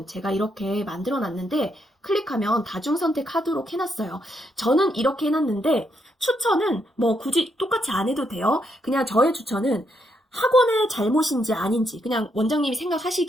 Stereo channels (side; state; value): both; normal; correlation 0.78